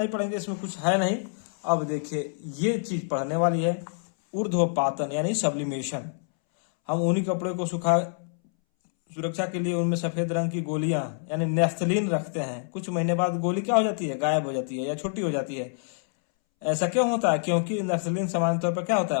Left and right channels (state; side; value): silent; right; 60 dB below the other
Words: पढ़ेंगे, इसमें कुछ है नहीं। अब देखिए ये चीज पढ़ने वाली है, ऊर्ध्वपातन यानी सब्लिमेशन। हम ऊनी कपड़े को सुरक्षा के लिए उनमें सफेद रंग की गोलियां यानी नेफ्थलीन रखते हैं। कुछ महीने बाद गोली क्या हो जाती है, गायब हो जाती है या छोटी हो जाती है। ऐसा क्यों होता है, क्योंकि नेफ्थलीन सामान्य तौर पर क्या होता